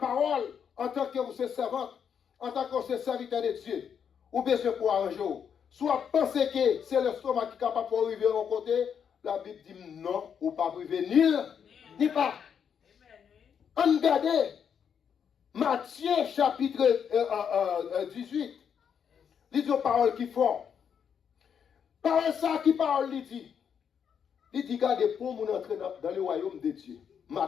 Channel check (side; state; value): right; quieter; 7.6 dB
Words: en tant que vous êtes servante, en tant que vous êtes serviteur de Dieu, ou bien c'est pour un jour, soit penser que c'est le stomac qui est capable de arriver à un côté, la Bible dit non, ou pas arriver ni pas. On regarde Matthieu chapitre 18. Il dit aux paroles qui font. Parole ça qui parle, il dit. Il dit, regardez, pour nous entrer dans le royaume de Dieu.